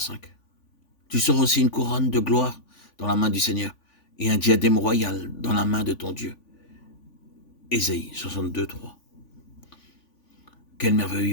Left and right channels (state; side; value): late; right; 3.5 ms